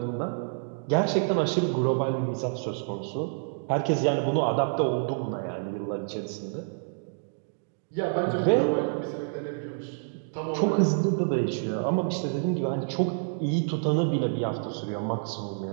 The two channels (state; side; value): silent; left; digital silence